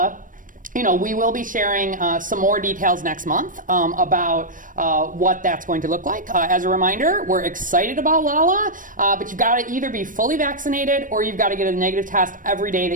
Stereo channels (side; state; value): left; late; 0.38 ms